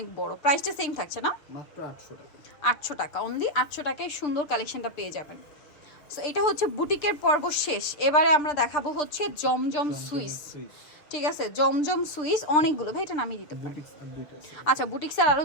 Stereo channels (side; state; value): right; late; 6.8 ms